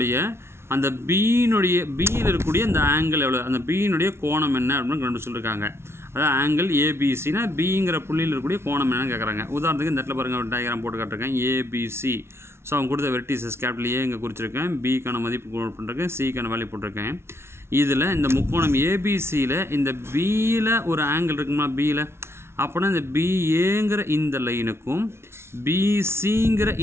அந்த பியில் இருக்கக்கூடிய அந்த ஆங்கிள் எவ்வளோ, அந்த பியினுடைய கோணம் என்ன அப்படின்னு கண்டு சொல்லியிருக்காங்க. அதாவது ஆங்கிள் ஏபிசினா பிங்கிற புள்ளியில் இருக்கக்கூடிய கோணம் என்னன்னு கேட்குறாங்க. உதாரணத்துக்கு இந்த இடத்துல பாருங்கள், டயக்ராம் போட்டு காட்டிருக்கேன் ஏபிசி. ஸோ அவங்க கொடுத்த வெர்டிசஸ் கேபிட்டல் ஏ இங்கே குறிச்சிருக்கேன், பிக்கான மதிப்பு போட்டிருக்கேன், சிக்கான வேல்யூ போட்டிருக்கேன். இதில் இந்த முக்கோணம் ஏபிசியில் இந்த பியில் ஒரு ஆங்கிள் இருக்குமா பியில், அப்படின்னா இந்த பிஏங்கிற இந்த லைனுக்கும் பிசிங்கிற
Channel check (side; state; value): left; late; 0.12 ms